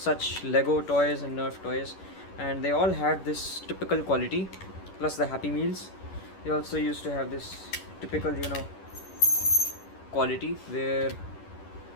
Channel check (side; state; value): right; late; 11 ms